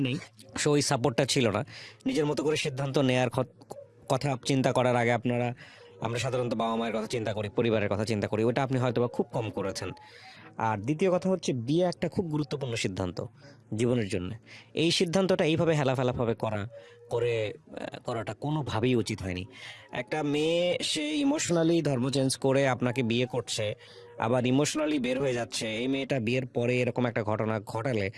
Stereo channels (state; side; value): identical; both; correlation 1.00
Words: নেই, সো ওই সাপোর্টটা ছিল না। নিজের মতো করে সিদ্ধান্ত নেয়ার কথা চিন্তা করার আগে আমরা সাধারণত বাবা মায়ের কথা চিন্তা করি, পরিবারের কথা চিন্তা করি, ওটা আপনি হয়তো বা খুব কম করেছেন। আর দ্বিতীয় কথা হচ্ছে বিয়ে একটা খুব গুরুত্বপূর্ণ সিদ্ধান্ত জীবনের জন্য। এই সিদ্ধান্তটা এইভাবে হেলাফেলাভাবে করাটা কোনোভাবেই উচিত হয়নি। একটা মেয়ে সে ইমোশনালি ধর্ম চেঞ্জ করে আপনাকে বিয়ে করছে, আবার ইমোশনালি বের হয়ে যাচ্ছে, এই মেয়েটা বিয়ের পরে এরকম একটা ঘটনা ঘটালে